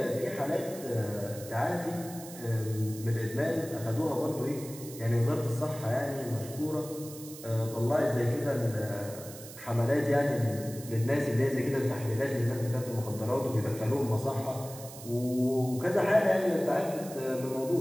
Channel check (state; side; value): noise; right; hiss, 15 dB below the sound